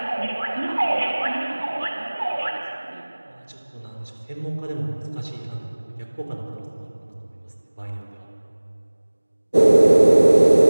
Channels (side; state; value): both; inverted; correlation -1.00